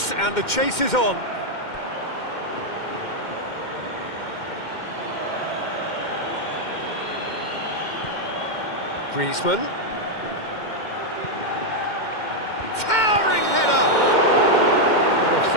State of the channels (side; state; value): right; late; 2.1 ms